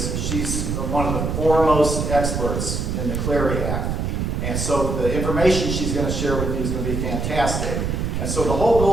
she's one of the foremost experts in the Clary Act. And so the information she's going to share with you is going to be fantastic. And so the whole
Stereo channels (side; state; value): right; noise; rumble, 1 dB below the sound